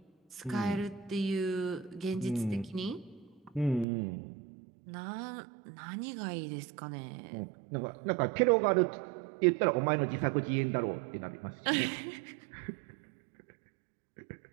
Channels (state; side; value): drops out; left; at 3.9 s